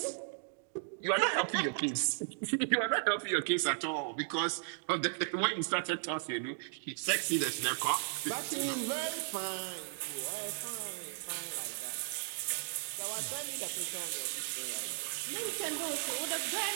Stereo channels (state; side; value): silent; left; digital silence